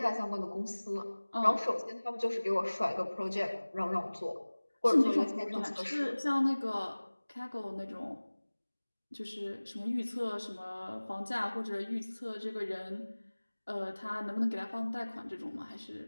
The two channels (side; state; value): both; inverted; correlation -1.00